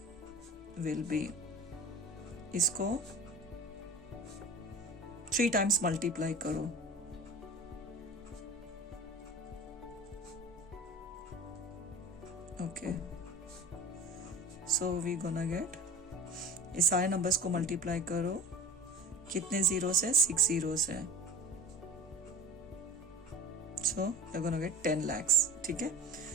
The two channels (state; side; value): normal; both; correlation 0.37